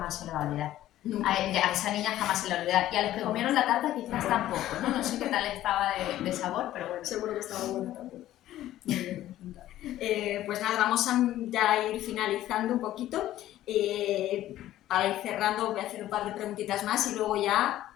se le va a olvidar. A esa niña jamás se le va a olvidar, y a los que comieron la tarta quizás tampoco, ¿no? No sé qué tal estaba de sabor, pero bueno. Seguro que estaba bueno también. Pues nada, vamos a ya ir finalizando un poquito. Para ir cerrando voy a hacer un par de preguntitas más y luego ya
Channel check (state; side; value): quieter; right; 13.8 dB